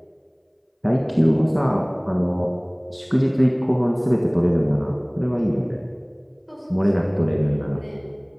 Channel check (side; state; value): both; identical; correlation 1.00